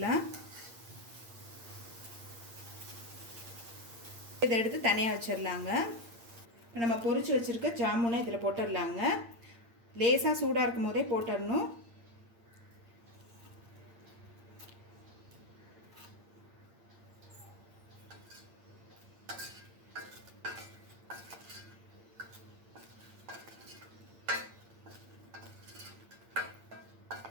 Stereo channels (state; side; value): late; left; 8.7 ms